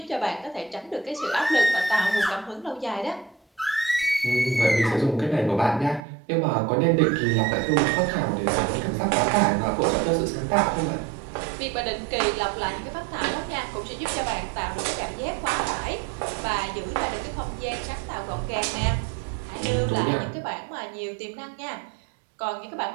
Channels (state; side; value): drops out; left; at 6.0 s